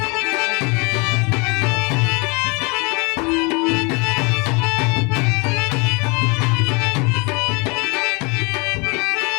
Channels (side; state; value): right; quieter; 30.0 dB